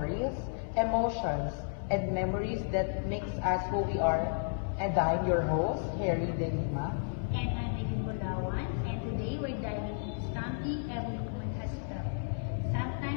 emotions, and memories that makes us who we are. And I'm your host, Harry De Lima. And I'm Edith Bulawan, and today we're diving into something every woman has felt.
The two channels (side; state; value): right; silent; 56 dB below the other